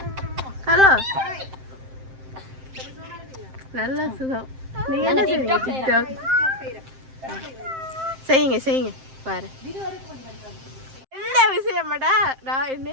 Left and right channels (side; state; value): left; late; 7.6 ms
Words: ஹலோ நல்ல சுகம். நீங்க என்ன செய்வீங்க? டிக்டாக் செய்யுங்க செய்யுங்க பாரு. என்ன விஷயமாடா நான்